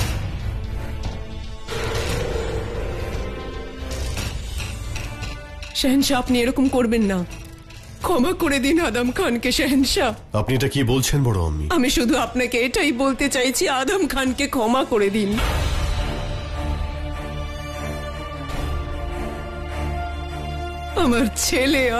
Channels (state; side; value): identical; both; correlation 1.00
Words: শাহেনশাহ আপনি এরকম করবেন না। ক্ষমা করে দিন আদম খানকে শাহেনশাহ। আপনি এটা কি বলছেন বড় আম্মি? আমি শুধু আপনাকে এটাই বলতে চাইছি, আদম খানকে ক্ষমা করে দিন। আমার ছেলে